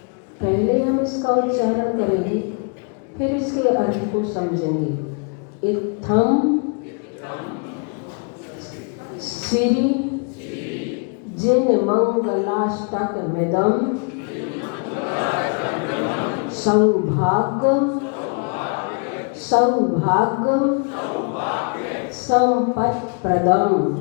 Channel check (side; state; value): right; quieter; 37.6 dB